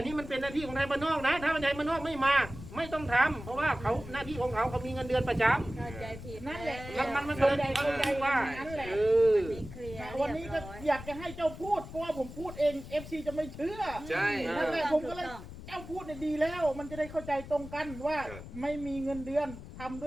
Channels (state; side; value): noise; left; rumble, 13 dB below the sound